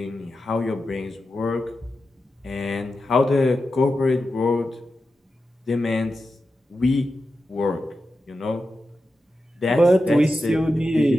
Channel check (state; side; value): normal; both; correlation 0.91